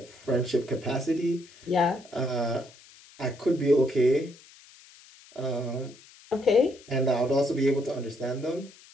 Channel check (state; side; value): noise; left; hiss, 24 dB below the sound